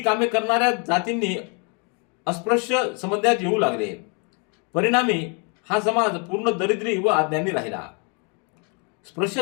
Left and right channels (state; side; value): quieter; right; 35.7 dB